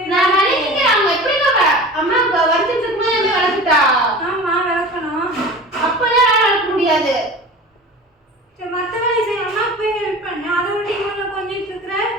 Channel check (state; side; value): normal; both; correlation 0.37